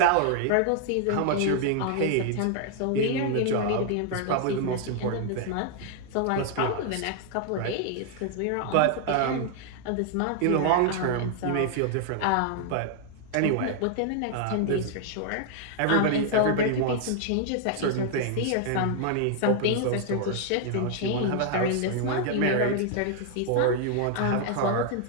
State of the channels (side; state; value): both; different; correlation 0.00